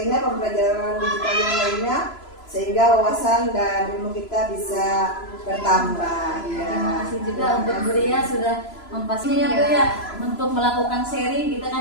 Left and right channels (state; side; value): late; right; 3.0 ms